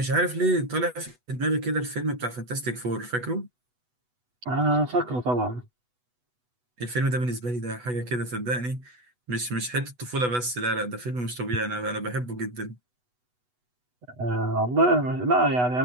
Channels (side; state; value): left; late; 8.1 ms